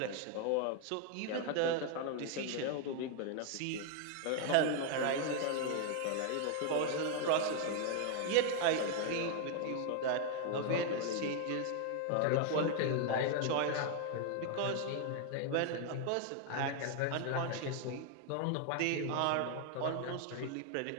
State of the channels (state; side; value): different; both; correlation 0.00